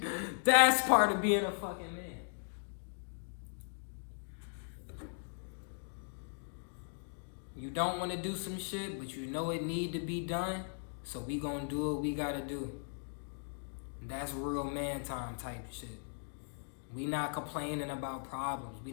That's part of being a fucking man. You don't want to do some shit, but you know it need to be done, so we gonna do what we gotta do. That's real man time type shit. We not complaining about problems. We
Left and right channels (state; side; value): silent; right; digital silence